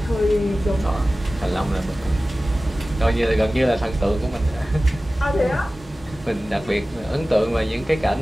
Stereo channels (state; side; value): normal; both; correlation 0.97